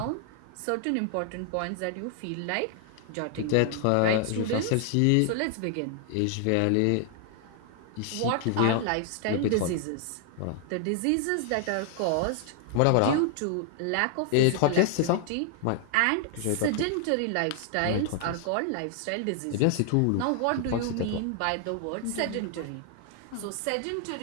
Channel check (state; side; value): different; both; correlation 0.00